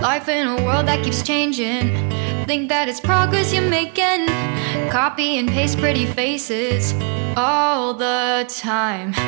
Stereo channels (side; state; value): left; quieter; 39.0 dB